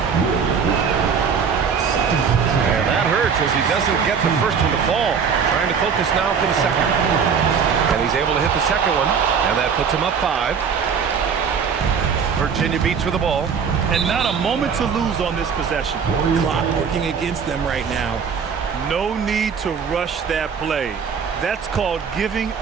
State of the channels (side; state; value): left; quieter; 6.5 dB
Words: Will Richard. Second personal. And that hurts as he doesn't get the first one to fall. Trying to focus now for the second. And he's able to hit the second one. And that puts him up 5. Virginia Beach with the ball. And not a moment to lose on this possession. Clock working against them right now. No need to rush that play. That's called giving